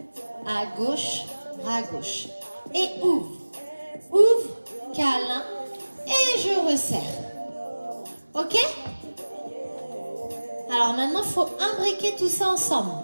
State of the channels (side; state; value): both; inverted; correlation -1.00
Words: À gauche, bras gauche. Et ouvre. Ouvre, câlin. Et je resserre. Ok? Alors maintenant, il faut imbriquer tout ça ensemble.